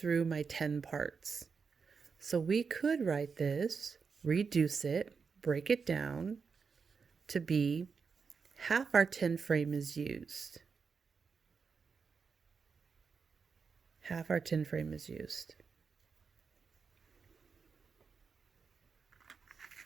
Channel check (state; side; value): quieter; left; 5.5 dB